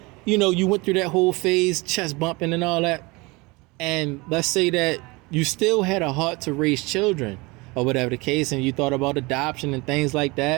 You went through that whole phase, chest bumping and all that. And let's say that you still had a heart to raise children or whatever the case, and you thought about adoption and things like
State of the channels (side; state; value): left; quieter; 24.8 dB